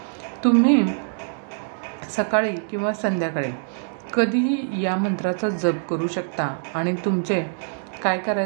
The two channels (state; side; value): silent; left; digital silence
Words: तुम्ही सकाळी किंवा संध्याकाळी कधीही या मंत्राचा जप करू शकता. आणि तुमचे काय